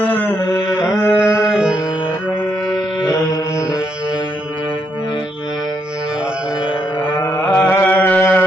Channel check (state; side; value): normal; both; correlation 0.77